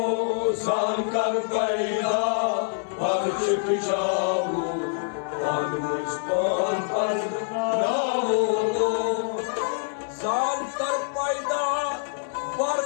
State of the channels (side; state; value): right; silent; 61 dB below the other